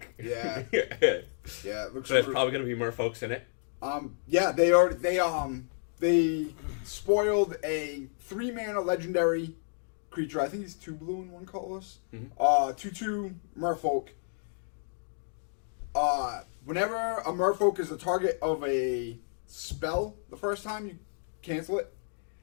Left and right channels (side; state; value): right; silent; digital silence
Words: Yeah. Yeah. Yeah, it looks. So there's probably going to be merfolks in it. Yeah, they spoiled a 3-mana legendary creature. I think he's 2 blue and 1 colorless. 2/2 merfolk. Whenever a merfolk is the target of a spell the first time, you cancel it.